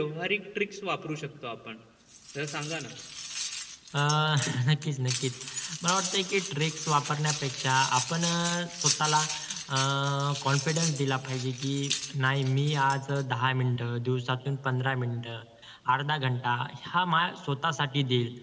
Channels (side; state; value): both; identical; correlation 1.00